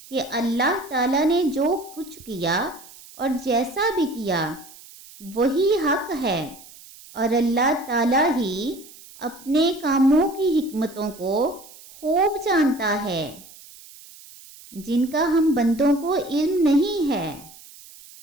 کہ اللہ تعالیٰ نے جو کچھ کیا اور جیسا بھی کیا وہی حق ہے، اور اللہ تعالیٰ ہی اپنے کاموں کی حکمتوں کو خوب جانتا ہے جن کا ہم بندوں کو علم نہیں ہے۔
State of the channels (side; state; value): right; noise; hiss, 20 dB below the sound